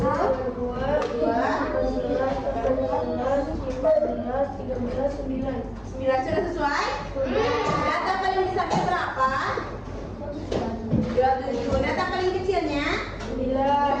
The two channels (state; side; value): identical; both; correlation 1.00